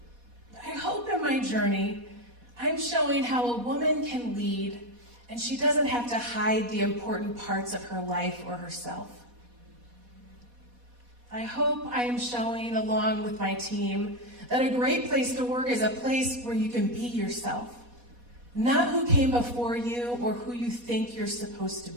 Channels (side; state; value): left; late; 4.1 ms